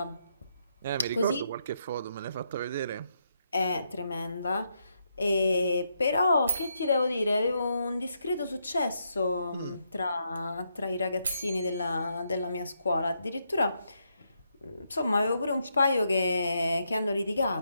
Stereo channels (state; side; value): inverted; both; correlation -0.79